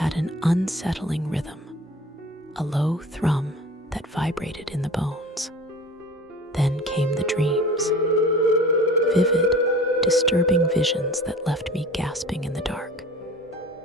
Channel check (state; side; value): normal; both; correlation 0.41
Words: an unsettling rhythm, a low thrum that vibrated in the bones. Then came the dreams, vivid, disturbing visions that left me gasping in the dark.